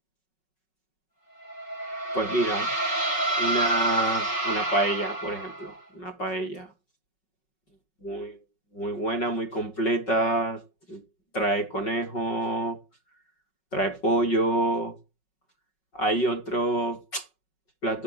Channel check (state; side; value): late; right; 5.4 ms